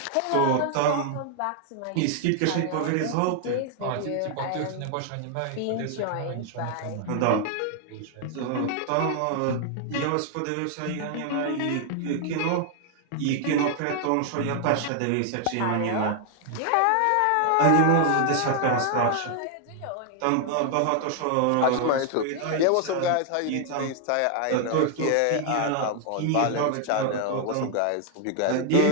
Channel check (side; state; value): both; different; correlation 0.00